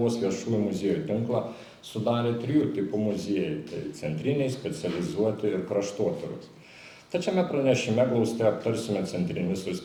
viešųjų muziejų tinklą sudarė 3 tipų muziejai, tai centriniai, specializuoti ir kraštotyros. Tačiame pranešime glaustai aptarsime centrinius ir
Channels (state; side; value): identical; both; correlation 1.00